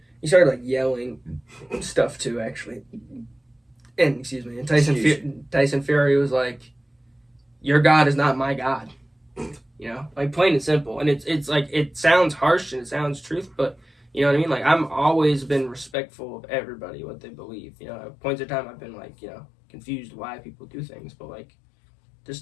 he started, like, yelling stuff, too, actually. And Tyson Fury was like, "Your God is not my God," you know, like, plain and simple. And it's like, it sounds harsh and it sounds truth, but you know what I mean. Like, I'm always been respectful of everybody, what they believe. You know, at points in time I've been, like, you know, confused why people do things, but, like, this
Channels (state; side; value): drops out; right; at 15.9 s